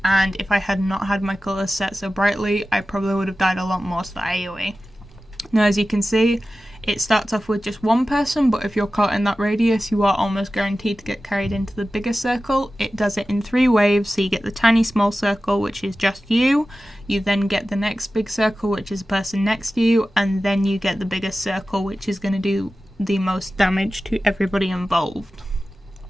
and if I had not had my colours set so brightly, I probably would have died a lot more to the AoE. Now, as you can see, It starts off with just one person, but if you're caught in that radius, you are almost guaranteed to get carried into the bigger circle. It does it in 3 waves, so you get the tiny small circle, which is just you. You then get the next big circle, which is the person next to you, and then you get the biggest circle, which is going to do the most damage to everybody involved.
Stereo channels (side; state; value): both; normal; correlation 0.95